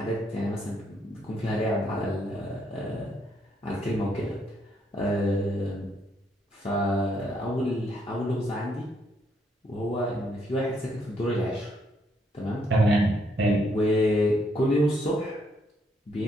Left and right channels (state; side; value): normal; both; correlation 0.73